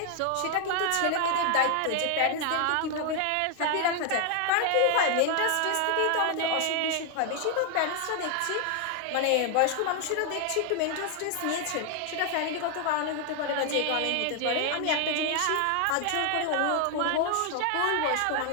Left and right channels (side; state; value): both; different; correlation 0.00